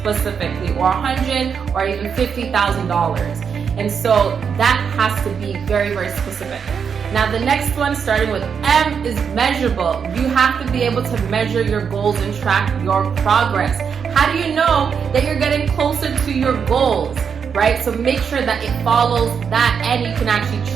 specifically, or 100, or even $50,000. And so that has to be very, very specific. Now the next one, starting with M, is measurable. You have to be able to measure your goals and track your progress. How do you know that you're getting closer to your goals, right? So make sure that it follows that and you can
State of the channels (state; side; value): quieter; left; 6.7 dB